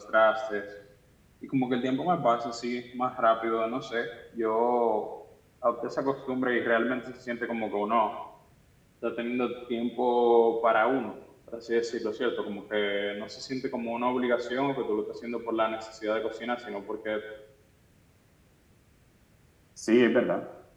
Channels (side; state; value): both; identical; correlation 1.00